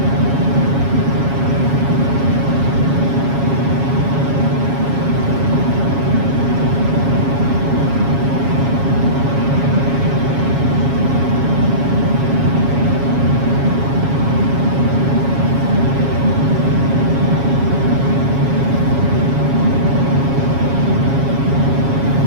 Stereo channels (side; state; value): left; late; 7.3 ms